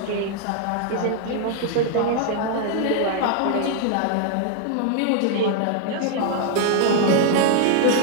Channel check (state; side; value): different; both; correlation 0.00